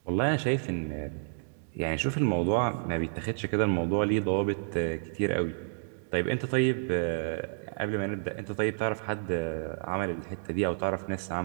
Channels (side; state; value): left; silent; digital silence